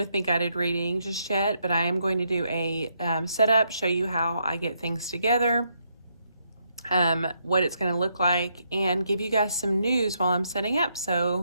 me guided reading just yet, but I am going to do a setup, show you how I get things together, what it's going to look like, and give you guys some news while I'm setting up.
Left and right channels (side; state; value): both; inverted; correlation -0.77